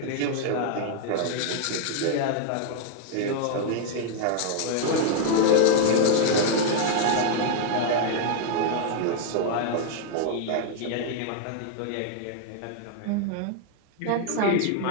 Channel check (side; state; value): both; different; correlation 0.00